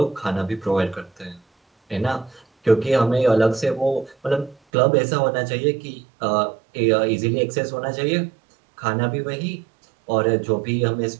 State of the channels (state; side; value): drops out; left; at 4.5 s